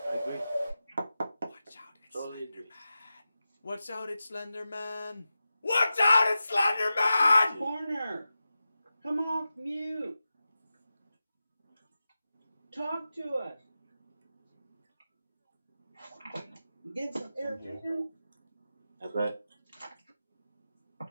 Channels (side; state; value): both; inverted; correlation -0.93